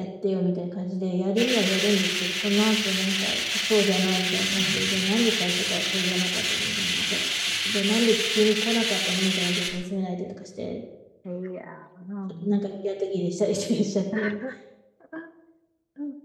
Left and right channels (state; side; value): identical; both; correlation 1.00